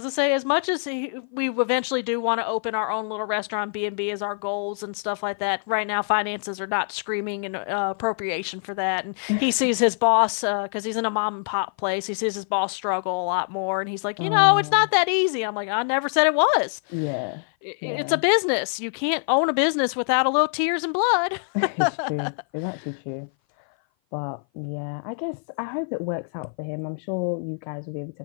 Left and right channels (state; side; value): silent; right; 57 dB below the other